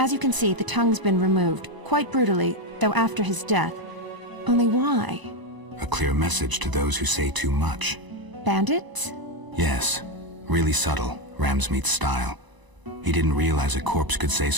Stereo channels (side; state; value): left; late; 1.0 ms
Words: you can see, the tongue's been removed, quite brutally, though after his death. Only why? A clear message to those who say too much. Bandits? Yes. Really subtle, Ramsmeat's style. He didn't realize a corpse could say